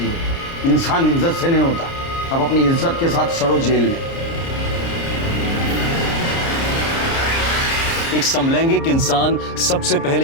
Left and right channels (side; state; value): right; late; 30 ms